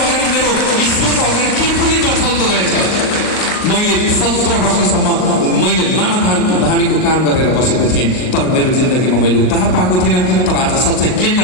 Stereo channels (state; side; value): late; right; 38 ms